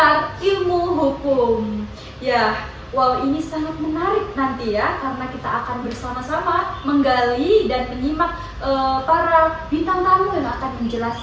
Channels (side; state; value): both; identical; correlation 1.00